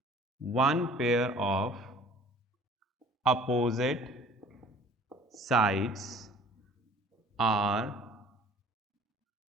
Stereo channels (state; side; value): normal; both; correlation 0.51